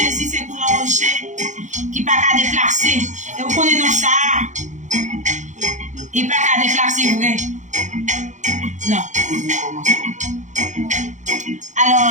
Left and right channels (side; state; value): left; late; 0.35 ms